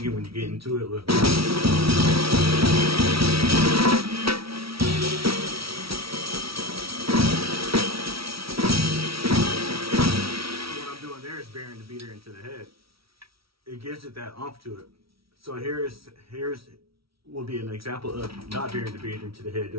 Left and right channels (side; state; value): left; late; 0.75 ms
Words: when you get into it with. Burying the beater into the head, it gives it that oomph to it. So here's will be an example of not burying the beater into the head,